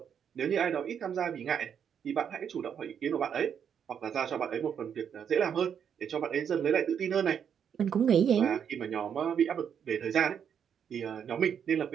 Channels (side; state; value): left; quieter; 8.0 dB